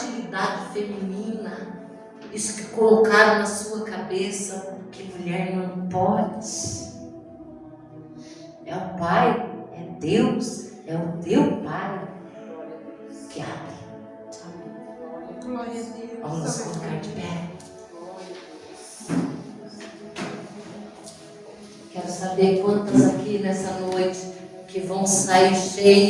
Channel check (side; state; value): both; identical; correlation 1.00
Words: feminina, isso que colocaram na sua cabeça, que mulher não pode. É o Pai, é Deus, é o teu Pai que abre. Glória a Deus. Vamos nos colocar de pé. Quero saber quantas aqui nessa noite que vão sair